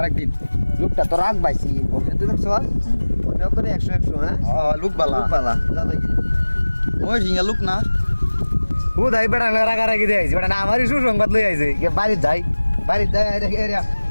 লোকটা তো রাখ পাইছি বলতে তুই দেখছ মনে করে 100 100 হ্যাঁ লুক বালা লোক বালা যা দেখি ওই হিঙ্গা লুক না ও দাই বেড়া রাখা রাখি দিয়ে আইছি বেড়া না আমারই সুসংবাদ লই আইছে কে বাড়ি যাই এরিয়া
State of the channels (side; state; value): both; inverted; correlation -1.00